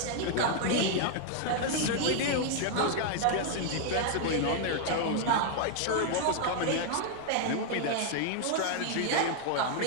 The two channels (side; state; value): both; different; correlation 0.00